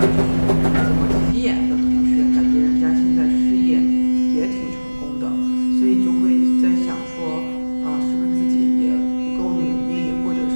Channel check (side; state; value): both; inverted; correlation -1.00